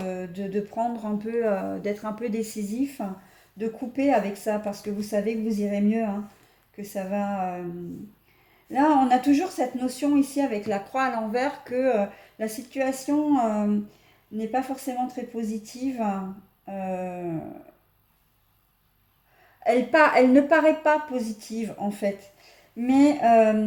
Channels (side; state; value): both; identical; correlation 1.00